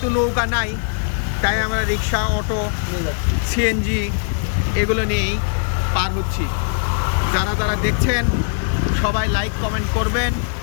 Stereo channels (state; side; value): silent; right; 66 dB below the other